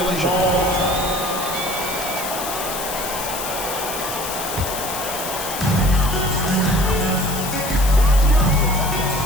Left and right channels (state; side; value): noise; left; hiss, 7 dB below the sound